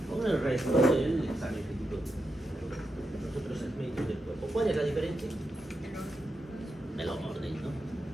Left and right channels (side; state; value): both; normal; correlation 0.86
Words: con el resto del examen físico de los otros segmentos del cuerpo. ¿Cuál es la diferencia? El orden, ¿no?